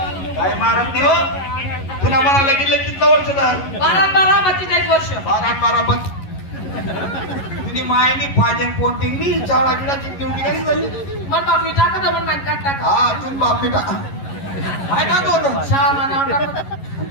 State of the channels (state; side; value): late; right; 11 ms